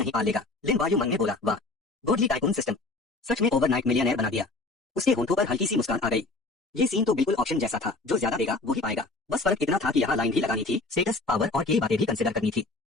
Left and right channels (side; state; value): right; quieter; 3.3 dB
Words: पाल लेगा। लिन वायु मन में बोला, वाह गोडली टाइकून सिस्टम, सच में ओवरनाइट मिलियनेयर बना दिया। उसके होंठों पर हल्की सी मुस्कान आ गई। ये सीन तो बिल्कुल ऑप्शन जैसा था, जो ज्यादा देगा वो ही पाएगा। बस फर्क इतना था कि यहाँ लाइन भी लगानी थी, स्टेटस, पावर और कई बातें भी कंसिडर करनी थी।